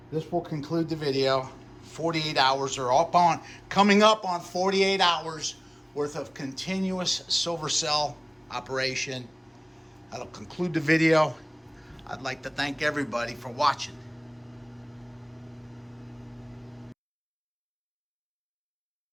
this will conclude the video. 48 hours are coming up on 48 hours worth of continuous silver cell operation. That'll conclude the video. I'd like to thank everybody for watching.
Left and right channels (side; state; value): both; identical; correlation 1.00